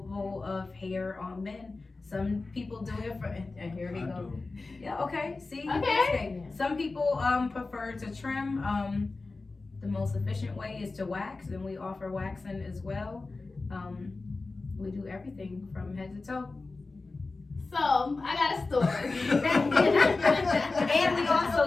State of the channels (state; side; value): quieter; right; 3.6 dB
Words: of hair on men. Some people do it for, and here we I go. do. Yeah, okay. See, Okay. manscape. Some people prefer to trim. The most efficient way is to wax, and we offer waxing as well. We do everything from head to toe. So, I got a story. And we